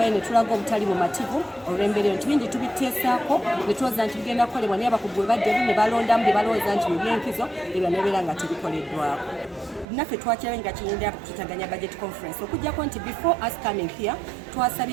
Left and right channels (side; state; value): left; drops out; at 9.9 s